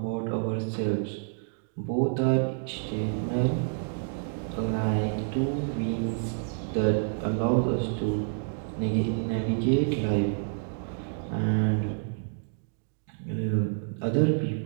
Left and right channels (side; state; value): left; silent; digital silence